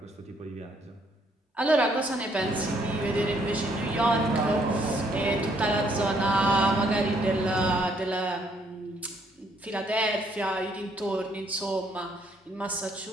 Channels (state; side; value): normal; both; correlation 0.68